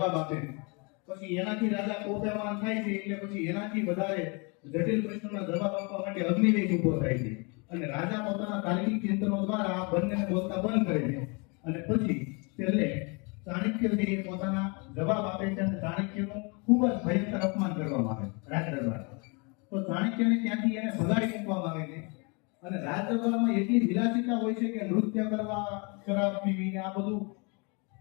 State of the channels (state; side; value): quieter; right; 31.7 dB